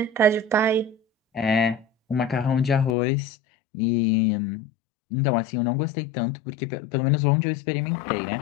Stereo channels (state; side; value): drops out; right; at 3.0 s